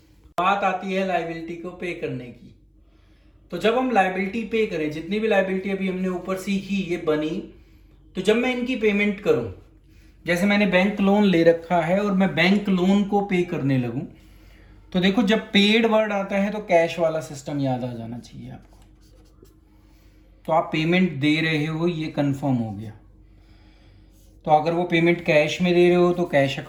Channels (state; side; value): identical; both; correlation 1.00